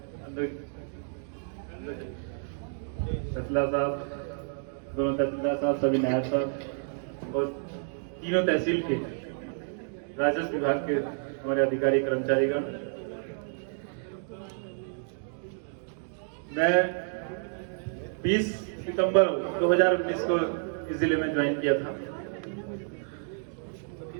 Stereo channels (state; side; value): silent; left; digital silence